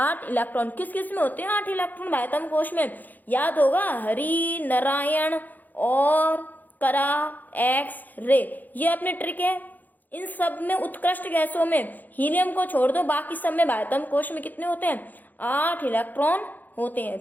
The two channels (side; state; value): right; late; 0.084 ms